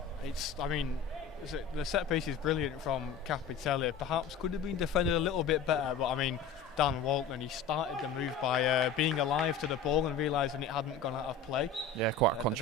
The set piece is brilliant from Capitelli. Perhaps could have been defended a little bit better, but I mean, Dan Walton, he started the move by being alive to the ball and realising it hadn't gone out of play. Yeah, quite a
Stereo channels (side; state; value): right; quieter; 5.3 dB